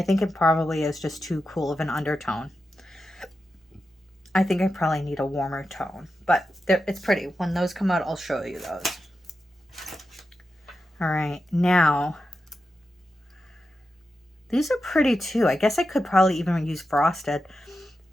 think it probably is just too cool of an undertone. I think I probably need a warmer tone, but it's pretty. When those come out, I'll show you those. All right, now these are pretty too. I guess I could probably even use frosted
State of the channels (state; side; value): normal; both; correlation 0.90